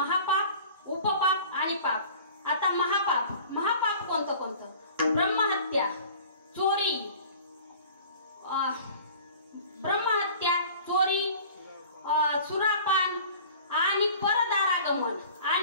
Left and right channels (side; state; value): both; inverted; correlation -0.45